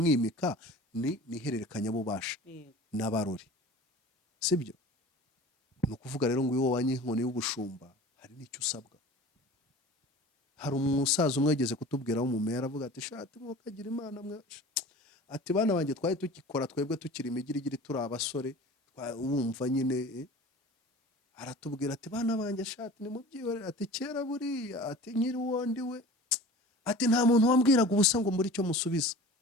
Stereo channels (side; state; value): both; normal; correlation 0.40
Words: ni ihererekanya bubasha n'abarori, sibyo? Ni ukuvuga rero ngo iyo wanye inkoni y'ubushumba hari n'icyo usabwa. Hari umusaza umwe yageze kutubwira w'umumeya, aravuga ati shati mukagira imana mwe, ati bana banjye twari tukikora twebwe tukiri imigirigiri turi abasore, wumva nyine aratubwira ati bana banjye shati ni mubyihorere, ati kera buriya, ati nkiri wondi we, ati nta muntu wambwiraga ubusa ngo muri cyo musubiza.